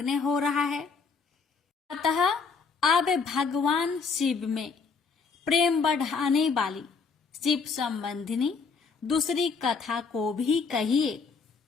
हो रहा है। अतः अब भगवान शिव में प्रेम बढ़ाने वाली शिव संबंधिनी दूसरी कथा को भी कहिए।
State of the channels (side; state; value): right; quieter; 5.1 dB